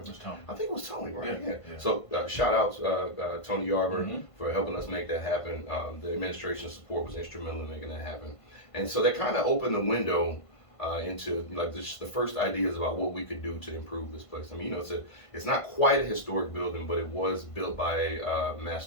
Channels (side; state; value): right; late; 1.5 ms